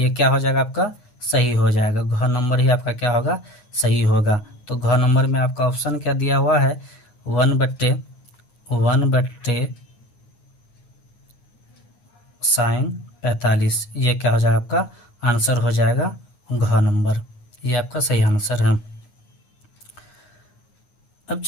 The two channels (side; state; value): right; late; 9.6 ms